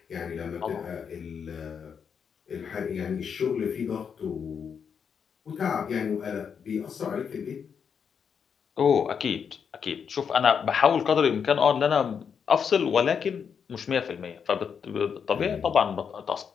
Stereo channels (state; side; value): quieter; right; 6.9 dB